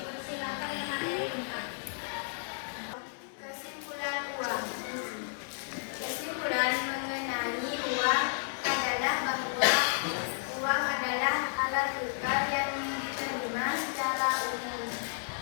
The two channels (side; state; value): right; silent; digital silence